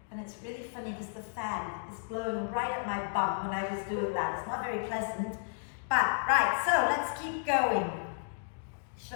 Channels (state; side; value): silent; right; digital silence